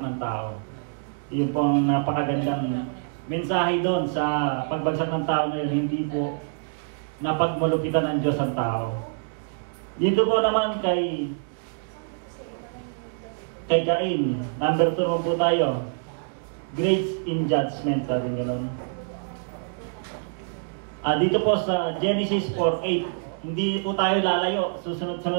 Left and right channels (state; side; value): silent; left; 61 dB below the other